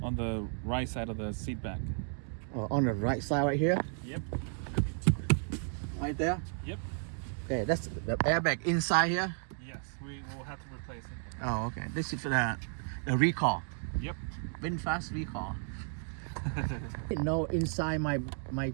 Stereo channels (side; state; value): left; silent; 55 dB below the other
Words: on the right side of the seat back. On the right side right here. Yep. Right there. Yep. Okay. That's the airbag inside here. Yes, we will have to replace it. Oh, okay. This is for the recall. Yep. VinFast Recall. No, inside my